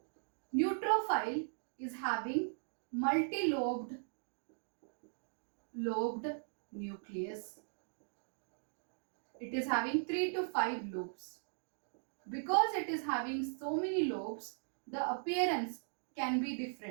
Neutrophil is having multi-lobed nucleus. It is having 3 to 5 lobes. Because it is having so many lobes, the appearance can be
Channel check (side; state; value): left; silent; digital silence